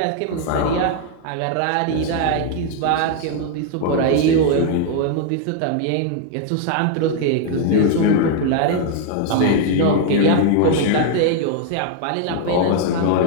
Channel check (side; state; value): both; different; correlation 0.00